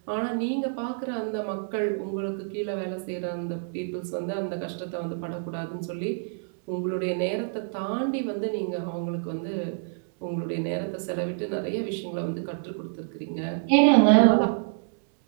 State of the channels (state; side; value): silent; left; 60 dB below the other